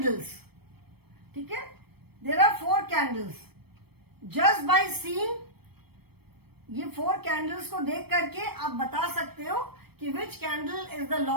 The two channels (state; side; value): late; left; 0.97 ms